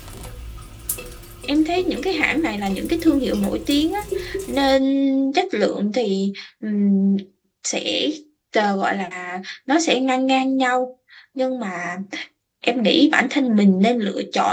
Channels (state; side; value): identical; both; correlation 1.00